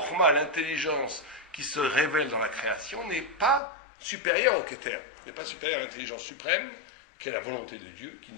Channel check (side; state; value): right; drops out; at 3.6 s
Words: l'intelligence qui se révèle dans la création, n'est pas supérieure au Keter. N'est pas supérieure à l'intelligence suprême, qui est la volonté de Dieu, qui